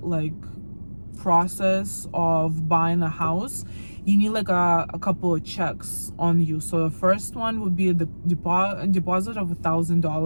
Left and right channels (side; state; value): both; inverted; correlation -1.00